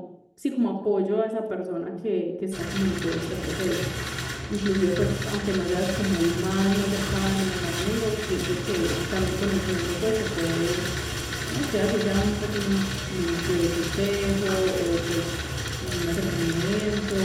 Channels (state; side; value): identical; both; correlation 1.00